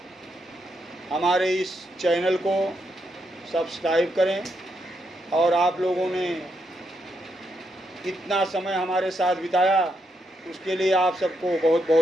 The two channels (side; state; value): both; normal; correlation 0.80